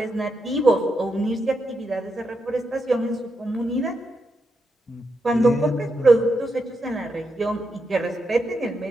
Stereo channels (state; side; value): normal; both; correlation 0.84